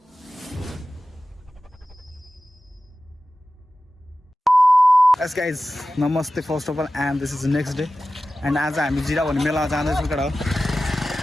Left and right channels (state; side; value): normal; both; correlation 0.95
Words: Yes guys, namaste first of all, and this is the next day. And आज हामी जिरा भन्ने मेलामा जाँदैछौँ केटा हो।